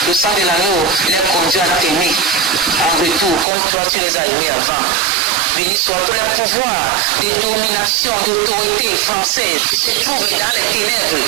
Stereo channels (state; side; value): drops out; left; at 3.5 s